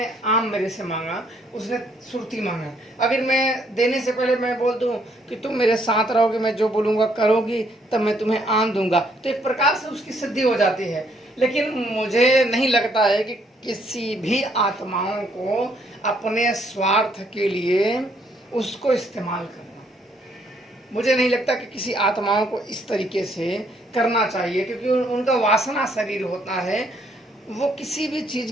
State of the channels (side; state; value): both; normal; correlation 0.69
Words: आम मेरे से मांगा, उसने सुर्ती मांगा, अगर मैं देने से पहले मैं बोल दूं कि तुम मेरे साथ रहोगे, मैं जो बोलूँगा करोगी, तब मैं तुम्हें आम दूंगा, तो एक प्रकार से उसकी सिद्धि हो जाती है। लेकिन मुझे नहीं लगता है कि किसी भी आत्माओं को अपने स्वार्थ के लिए उसको इस्तेमाल करना, मुझे नहीं लगता कि किसी आत्माओं को इस तरीके से करना चाहिए, क्योंकि उनका वासना शरीर होता है, वो किसी भी चीज़